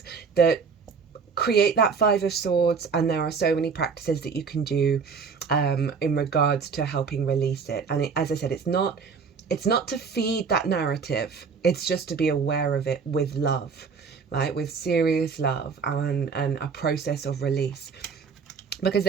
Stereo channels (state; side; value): quieter; left; 5.6 dB